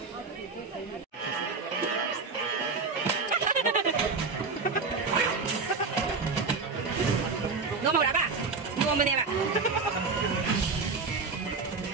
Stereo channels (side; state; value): left; quieter; 4.5 dB